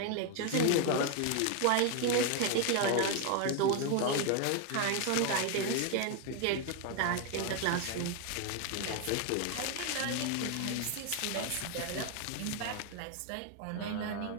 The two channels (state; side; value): different; both; correlation 0.01